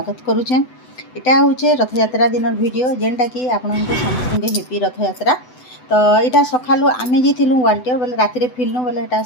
करुचे। इटा हूँ रथ यात्रा दिन वीडियो जेनटा कि आपन समस्त हेपी रथ यात्रा। तो यहाँ सकालू आम जाइलु वाल्टियर बोले राति फिल्नु बोले यहाँ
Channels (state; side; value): late; right; 8.0 ms